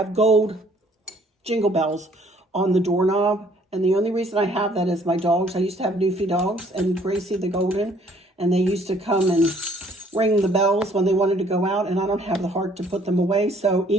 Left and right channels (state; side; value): normal; both; correlation 0.61